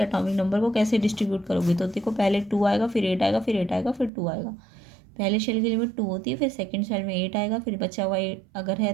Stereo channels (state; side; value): drops out; left; at 4.1 s